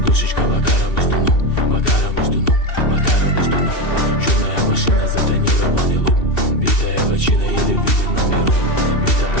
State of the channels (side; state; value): right; late; 2.7 ms